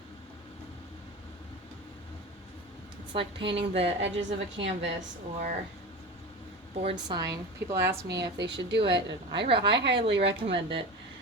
It's like painting the edges of a canvas or board sign. People ask me if they should do it, and I highly recommend it.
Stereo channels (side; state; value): both; normal; correlation 0.28